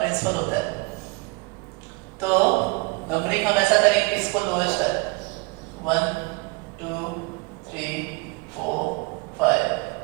होता है। तो नंबरिंग हम ऐसा करेंगे कि इसको लोएस्ट है, 1 2 3 4 5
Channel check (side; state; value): left; quieter; 27.4 dB